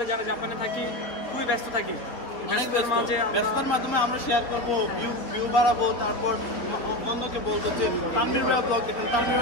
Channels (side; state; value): right; late; 3.8 ms